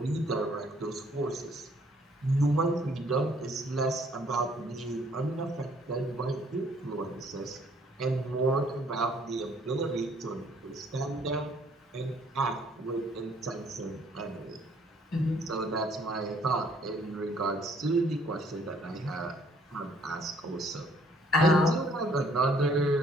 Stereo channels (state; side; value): normal; both; correlation 0.63